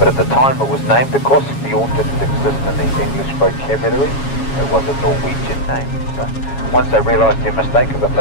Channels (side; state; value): right; late; 7.2 ms